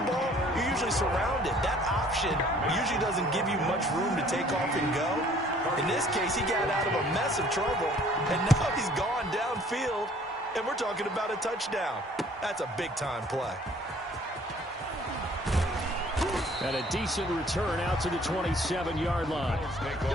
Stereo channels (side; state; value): both; normal; correlation 0.56